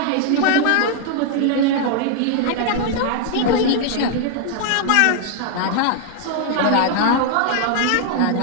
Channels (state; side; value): different; both; correlation 0.00